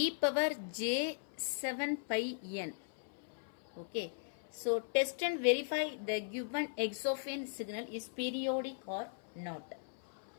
power j 7 pi n. Okay. So test and verify the given x of n signal is periodic or not.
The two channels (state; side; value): silent; right; 52 dB below the other